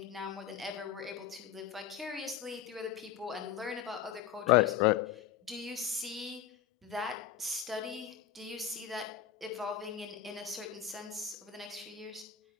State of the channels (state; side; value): quieter; right; 9.2 dB